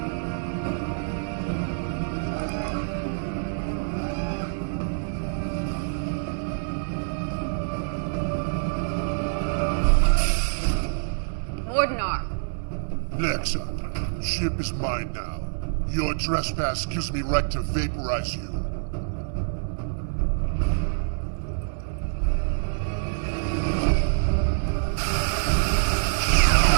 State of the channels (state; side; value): silent; left; digital silence